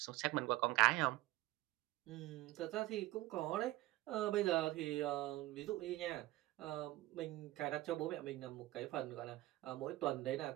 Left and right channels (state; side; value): quieter; left; 17.6 dB